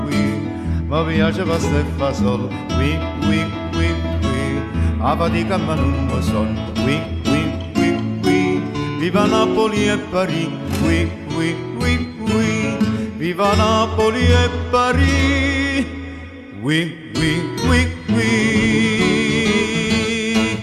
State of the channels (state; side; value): identical; both; correlation 1.00